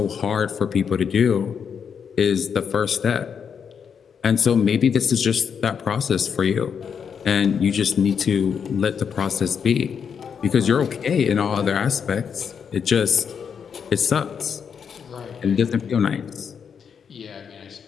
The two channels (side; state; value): right; quieter; 7.0 dB